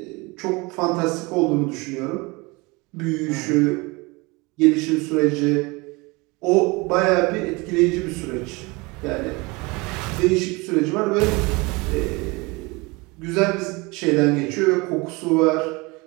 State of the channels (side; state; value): left; quieter; 25.4 dB